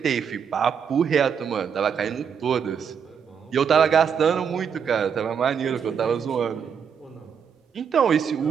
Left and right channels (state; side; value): quieter; left; 7.2 dB